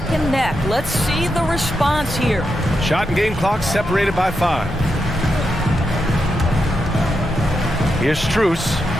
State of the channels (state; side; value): normal; both; correlation 0.85